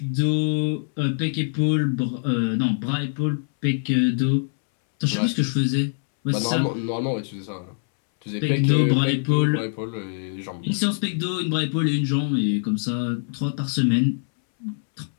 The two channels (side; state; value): right; silent; 63 dB below the other